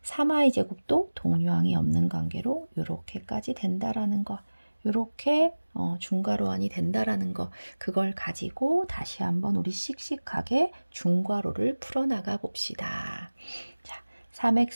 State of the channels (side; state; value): both; inverted; correlation -1.00